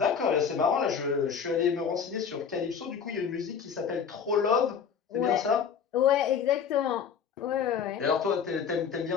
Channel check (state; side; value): quieter; right; 7.0 dB